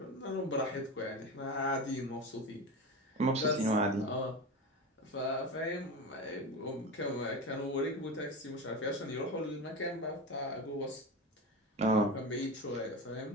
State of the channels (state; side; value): normal; both; correlation 0.24